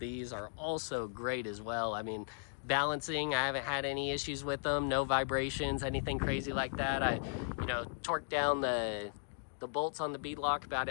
are also great as well. I mean, balancing, I haven't had any issues with them. No vibrations, anything crazy like that. I, torqued down the bolts on the bead lock about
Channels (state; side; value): silent; right; digital silence